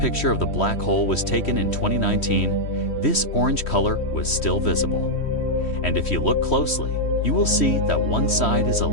of the black hole was taken in 2019, this orange color was still visible. And if you look closely, you will see that one side is a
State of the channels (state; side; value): late; right; 3.1 ms